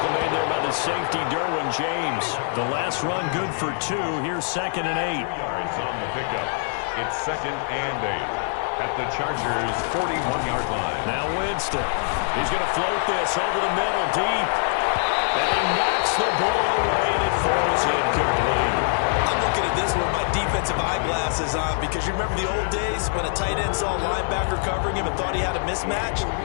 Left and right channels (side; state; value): right; silent; 63 dB below the other